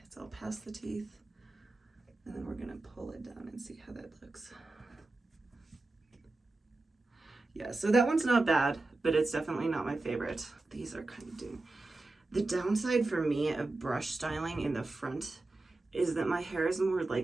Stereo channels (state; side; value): quieter; left; 3.1 dB